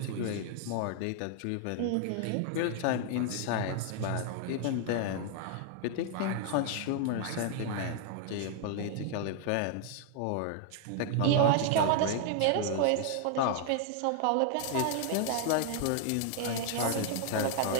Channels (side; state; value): both; different; correlation 0.00